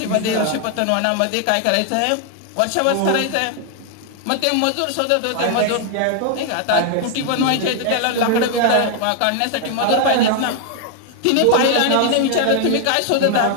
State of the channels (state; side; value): different; both; correlation 0.00